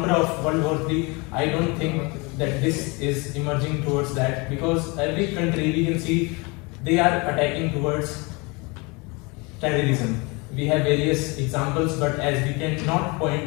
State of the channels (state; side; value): quieter; right; 27.8 dB